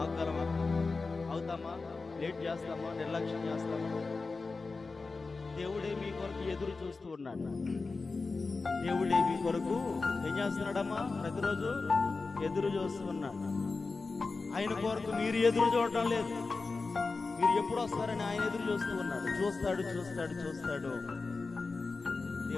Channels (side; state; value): right; quieter; 4.0 dB